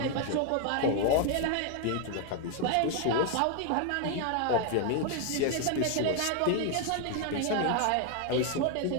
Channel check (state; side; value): different; both; correlation 0.01